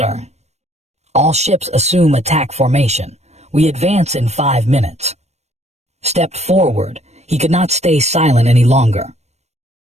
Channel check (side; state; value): left; late; 0.32 ms